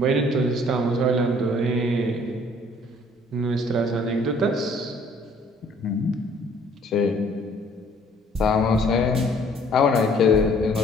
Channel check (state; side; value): normal; both; correlation 0.58